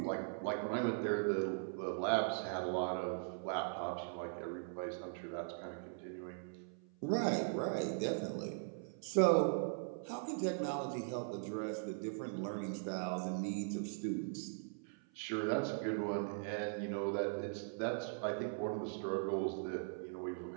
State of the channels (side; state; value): left; silent; 51 dB below the other